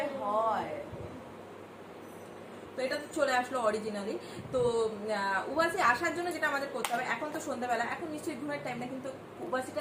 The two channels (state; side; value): identical; both; correlation 1.00